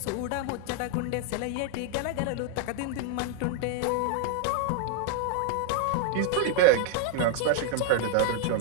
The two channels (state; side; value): different; both; correlation 0.00